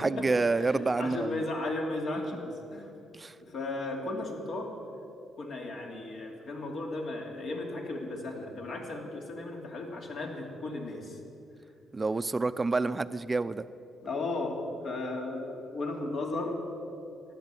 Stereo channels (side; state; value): both; normal; correlation 0.83